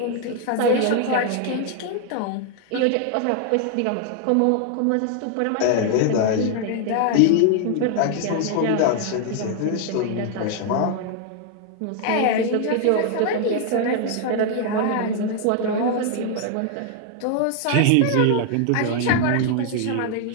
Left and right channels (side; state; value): both; different; correlation 0.00